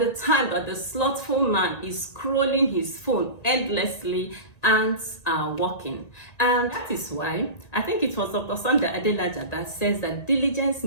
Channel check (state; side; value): late; right; 1.8 ms